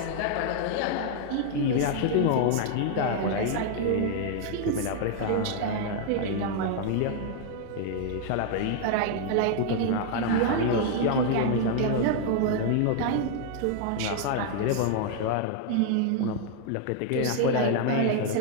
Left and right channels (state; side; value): different; both; correlation 0.00